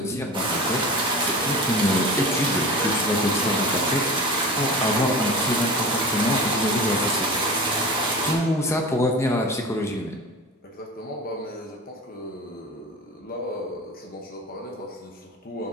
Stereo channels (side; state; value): both; normal; correlation 0.33